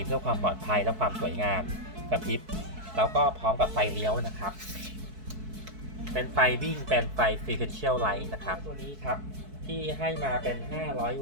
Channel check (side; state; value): left; late; 4.6 ms